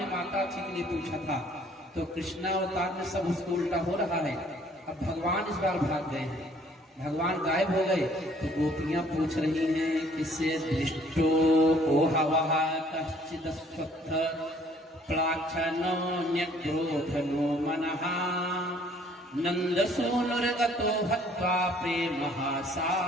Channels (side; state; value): both; normal; correlation 0.59